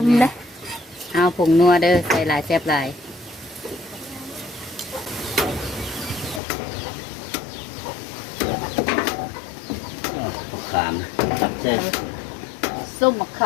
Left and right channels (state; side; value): drops out; right; at 6.4 s